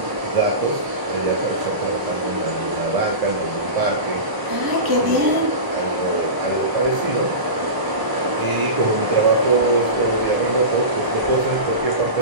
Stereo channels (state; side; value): late; left; 1.0 ms